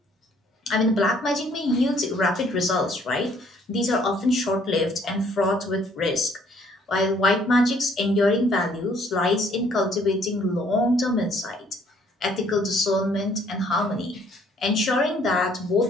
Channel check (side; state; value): both; normal; correlation 0.62